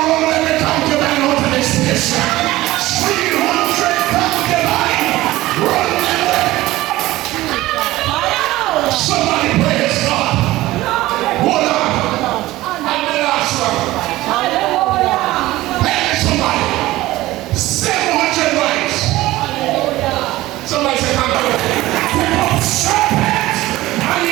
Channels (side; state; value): left; quieter; 17.3 dB